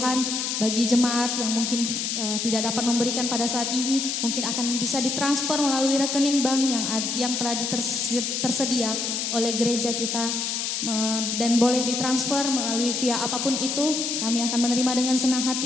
bagi jemaat yang mungkin tidak dapat memberikan pada saat ini, mungkin akan bisa ditransfer melalui rekening bank yang telah tersedia oleh gereja kita, dan boleh ditransfer melalui via apapun itu. Kami akan menerima dengan senang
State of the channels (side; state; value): left; noise; hiss, 1 dB below the sound